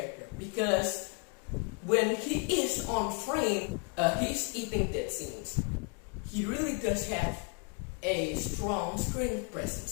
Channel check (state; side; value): quieter; right; 37.4 dB